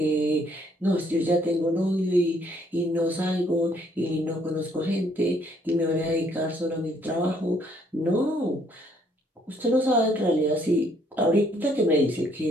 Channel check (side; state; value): both; normal; correlation 0.66